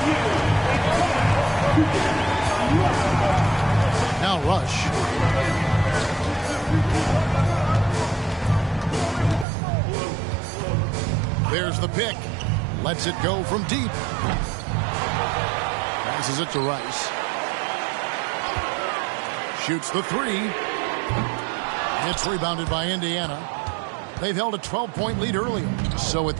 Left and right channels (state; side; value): drops out; left; at 9.5 s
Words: Now Rush. There's the pick. Lets it go from deep. Passes it to Rice. Shoots the three. It's rebounded by Indiana. They've held a 12-point lead earlier. So with